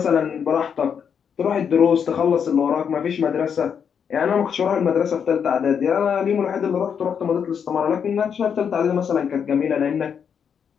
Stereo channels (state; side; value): quieter; right; 7.3 dB